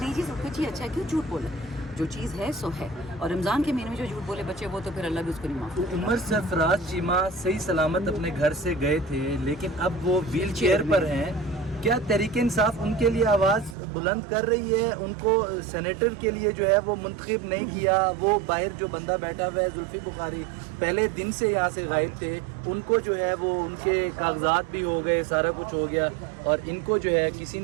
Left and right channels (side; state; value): left; drops out; at 13.8 s